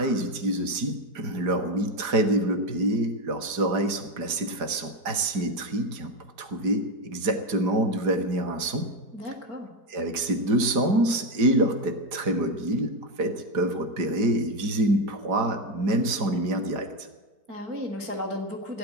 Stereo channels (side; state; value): left; late; 4.9 ms